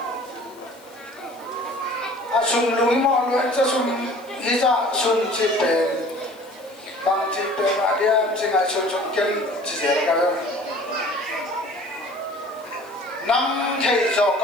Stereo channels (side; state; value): left; noise; hiss, 27 dB below the sound